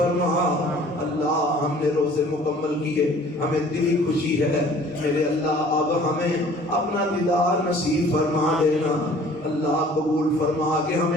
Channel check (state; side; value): normal; both; correlation 0.51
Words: اللہ ہم نے روزے مکمل کیے، ہمیں دلی خوشی ہے، میرے اللہ اب ہمیں اپنا دیدار نصیب فرما دینا، اللہ قبول فرما کہ